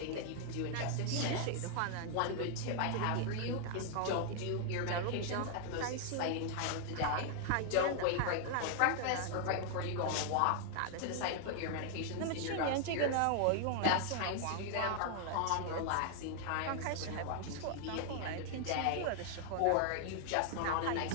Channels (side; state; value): both; different; correlation 0.00